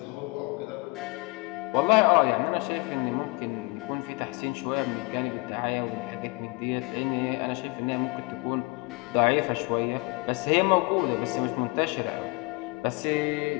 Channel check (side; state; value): right; quieter; 27.2 dB